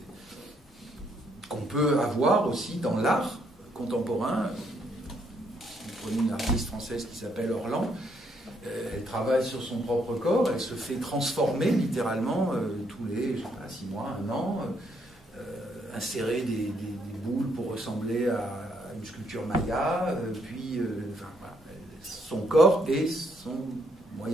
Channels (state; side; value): normal; both; correlation 0.72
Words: qu'on peut avoir aussi dans l'art contemporain. Vous prenez une artiste française qui s'appelle Orlan, elle travaille sur son propre corps, elle se fait transformer littéralement tous les 6 mois, 1 an, insérer des boules pour ressembler à une sculpture maya, puis voilà, son corps est son